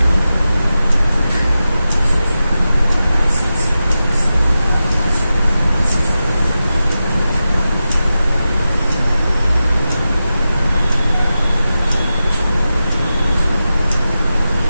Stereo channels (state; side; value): inverted; both; correlation -0.92